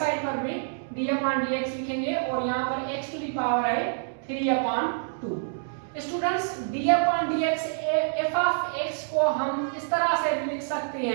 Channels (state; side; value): silent; left; digital silence